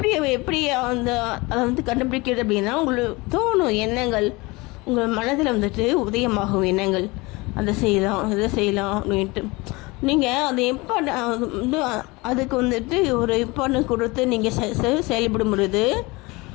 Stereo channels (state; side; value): quieter; right; 24.0 dB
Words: எப்படி அதை வந்து கண்டுபிடிக்கிறது அப்படின்னா, உங்களுக்கு தோணும் எண்ணங்கள், உங்கள் மனதில் வந்துட்டு உதயமாகும் எண்ணங்கள், அதை செய்யலாம் இதை செய்யலாம் அப்படின்ட்டு. நீங்கள் அது அதுக்கு வந்துட்டு ஒரு இம்பார்ட்டன்ஸ் கொடுத்து நீங்கள் செயல்படும் பொழுது